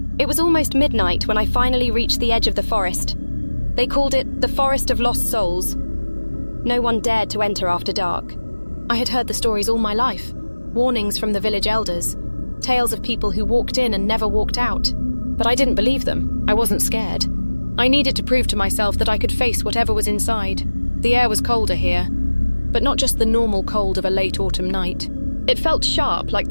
It was almost midnight when I finally reached the edge of the forest. They called it the Forest of Lost Souls. No one dared to enter after dark. I had heard the stories all my life. Warnings from the village elders. Tales of people who walked in and never walked out. But I didn't believe them. I wasn't scared. I needed to prove to myself that I could face whatever was inside. The air was colder here, but not just the normal cold of a late autumn night. It felt sharp, like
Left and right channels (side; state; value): both; inverted; correlation -1.00